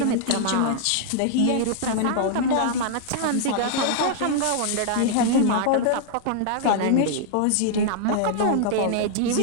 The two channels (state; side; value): different; both; correlation -0.01